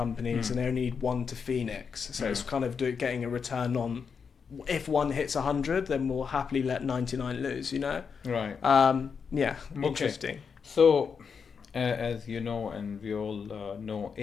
and they only need one to Phoenix. So it's kind of getting a return on, if one hits 100, then we'll happily let 99 lose, Right. Interesting. So, as you know, and we all know,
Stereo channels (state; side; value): quieter; right; 6.1 dB